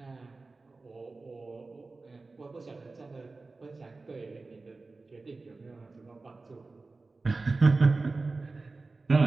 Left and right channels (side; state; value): left; quieter; 3.6 dB